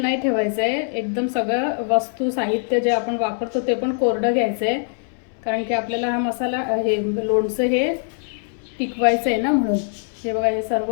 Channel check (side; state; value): right; silent; 59 dB below the other